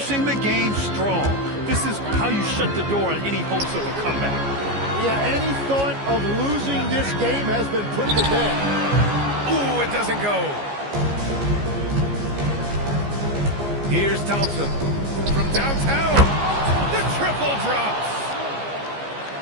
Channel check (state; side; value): late; left; 14 ms